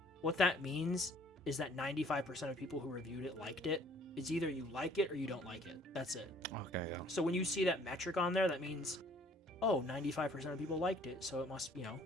what that means is that 95% of people who reviewed it liked it. It's either you like it or you don't like it. That's it. Okay. Yeah. So when you see that metric on there, that means, 95% of people liked it, so it must,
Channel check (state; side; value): normal; both; correlation 0.57